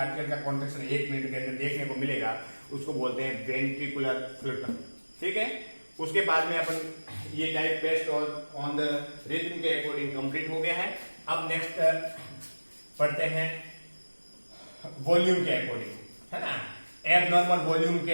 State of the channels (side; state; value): both; inverted; correlation -1.00